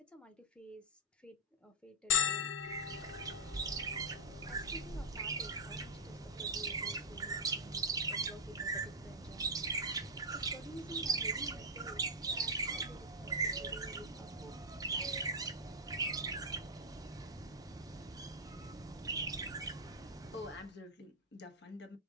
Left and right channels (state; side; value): normal; both; correlation -0.03